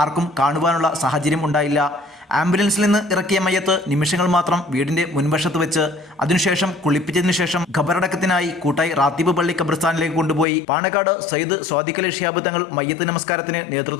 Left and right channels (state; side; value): drops out; right; at 10.5 s